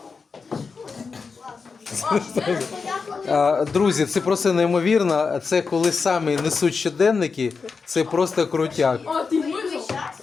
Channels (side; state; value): right; quieter; 5.0 dB